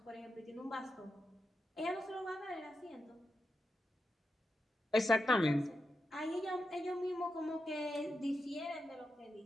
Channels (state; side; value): normal; both; correlation 0.88